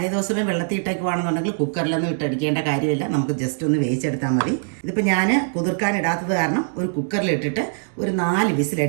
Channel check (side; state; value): left; silent; digital silence